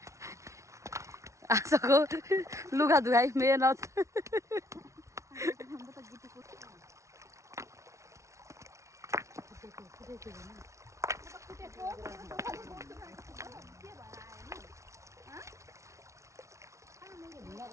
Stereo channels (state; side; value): late; left; 0.14 ms